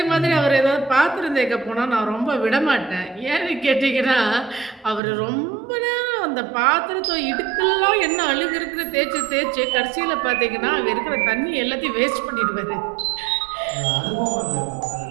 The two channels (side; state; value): left; drops out; at 5.0 s